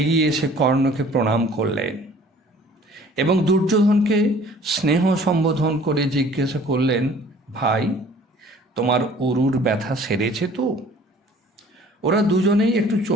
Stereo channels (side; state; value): both; normal; correlation 0.52